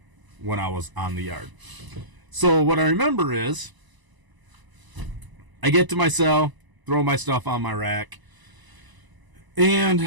when I was on the yard. So, what I remember is I get to my cell, throw my stuff on my rack, and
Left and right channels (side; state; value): left; late; 1.0 ms